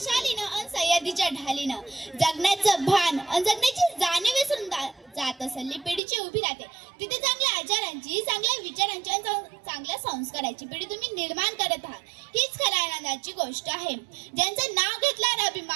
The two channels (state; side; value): drops out; left; at 6.0 s